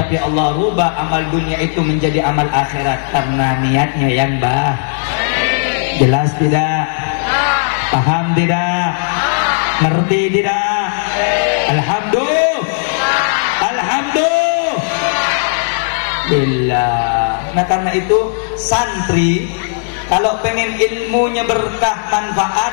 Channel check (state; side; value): silent; right; digital silence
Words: Allah rubah amal dunia itu menjadi amal akhirat karena niatnya yang baik. Jelas tidak? Paham tidak? Ngerti tidak? Alhamdulillah. Nah karena itu santri kalau pengen ilmunya berkah